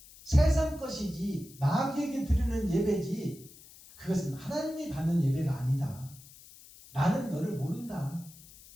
세상 것이지 마귀에게 드리는 예배지 그것은 하나님이 받는 예배가 아니다. 나는 너를 모른다.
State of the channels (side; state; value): left; noise; hiss, 21 dB below the sound